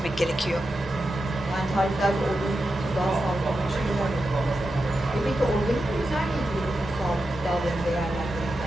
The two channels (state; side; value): normal; both; correlation 0.89